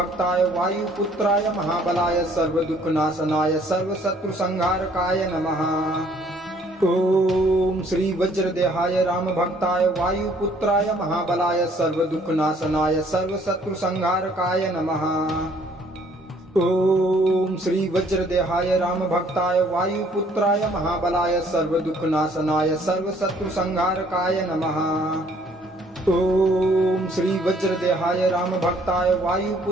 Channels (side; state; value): both; normal; correlation 0.61